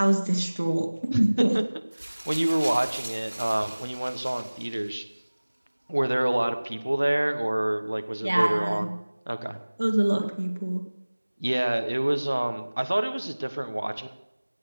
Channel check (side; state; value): both; inverted; correlation -1.00